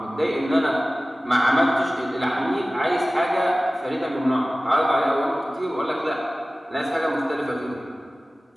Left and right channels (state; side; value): normal; both; correlation 0.97